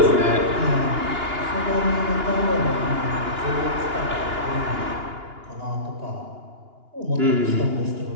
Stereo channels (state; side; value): late; left; 2.9 ms